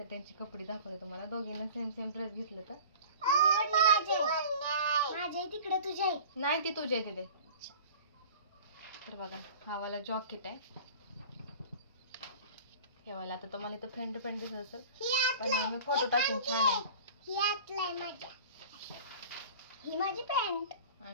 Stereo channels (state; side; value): inverted; both; correlation -0.41